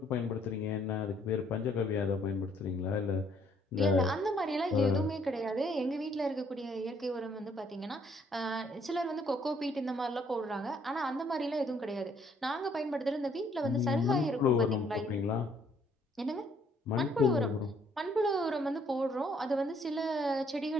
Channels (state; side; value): normal; both; correlation 0.66